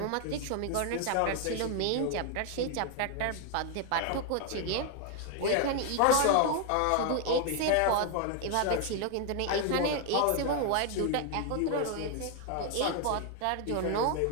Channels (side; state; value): both; different; correlation 0.00